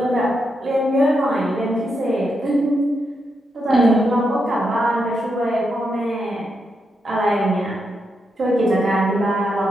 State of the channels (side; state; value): both; normal; correlation 0.83